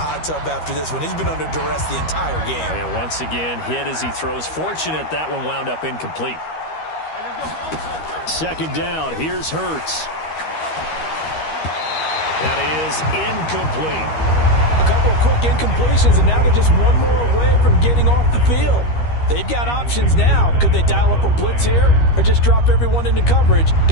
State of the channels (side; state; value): right; late; 13 ms